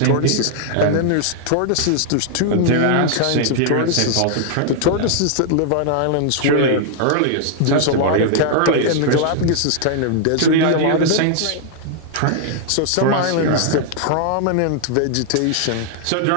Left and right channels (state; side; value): different; both; correlation -0.01